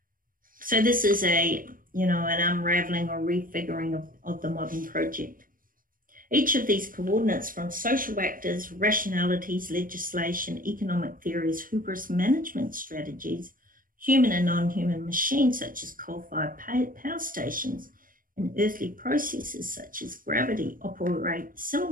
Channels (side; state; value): left; late; 0.40 ms